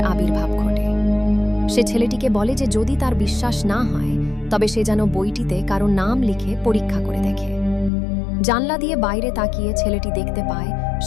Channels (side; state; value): right; drops out; at 7.9 s